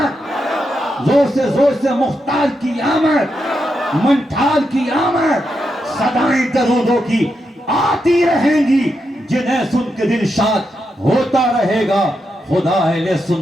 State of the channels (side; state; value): both; normal; correlation 0.84